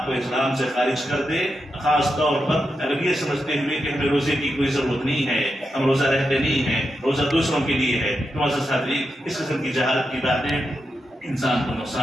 کو اسلام سے خارج کر دے، خاص طور پر اگر یہ سمجھتے ہوئے کہ ہمیں روزے کی کوئی ضرورت نہیں ہے، ہم روزہ رہتے نہیں ہیں، روزہ دوسروں کے لیے ہے. معزز حاضرین، اس قسم کی جہالت کی باتیں انسان کو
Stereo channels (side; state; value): both; normal; correlation 0.87